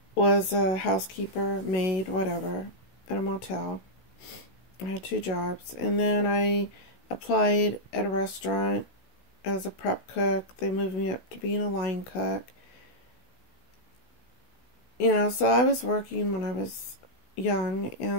was a housekeeper, maid, whatever, at a motel. I had 2 jobs, and then I applied at a restaurant as a prep cook. They moved me up to being a line cook. You know, so I was working when I was young,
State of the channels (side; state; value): right; late; 16 ms